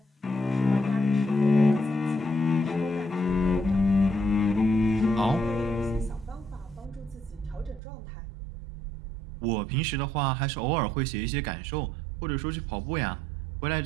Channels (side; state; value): left; drops out; at 7.8 s